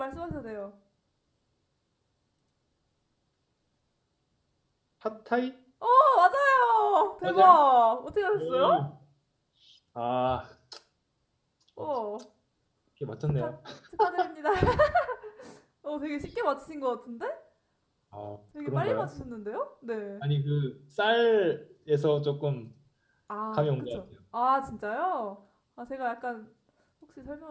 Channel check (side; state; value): both; identical; correlation 1.00